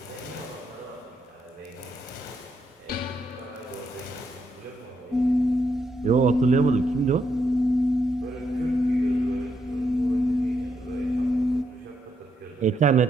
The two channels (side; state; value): both; normal; correlation 0.79